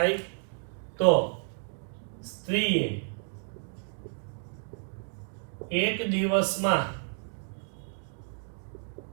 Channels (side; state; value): left; silent; digital silence